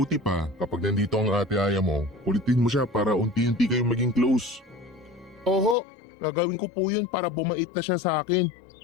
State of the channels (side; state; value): right; drops out; at 5.8 s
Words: pa, kapag nandito ang Ate Aya mo, kulitin mo siya para unti-unti kayong maging close. Oo, gagawin ko po yun para bumait na siya sa akin.